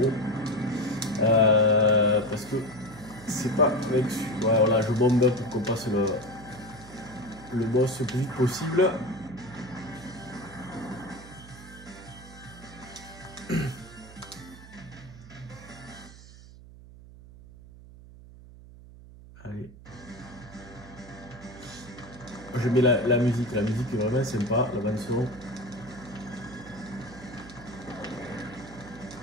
trop. Parce que c'est pas avec. Ouais, voilà, je bombe pour qu'on passe le boss le plus vite possible. Allez. Je mets la musique est vraiment sympa, la bande son.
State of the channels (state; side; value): noise; right; hum, 18 dB below the sound